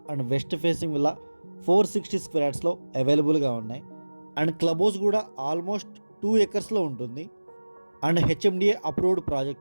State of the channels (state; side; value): inverted; both; correlation -1.00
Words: and west facing villa 460 square యార్డ్స్లో అవైలబుల్గా ఉన్నాయి. అండ్ క్లబ్ హౌస్ కూడా ఆల్మోస్ట్ 2 ఎకర్స్లో ఉంటుంది. అండ్ హెచ్ఎండిఏ అప్రూవ్డ్